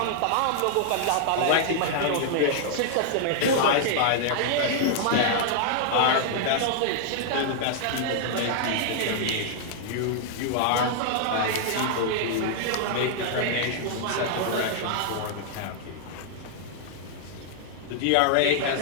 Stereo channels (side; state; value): both; different; correlation -0.01